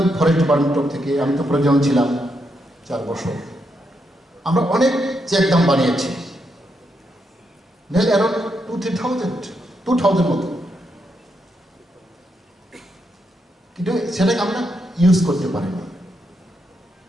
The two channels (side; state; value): both; normal; correlation 0.81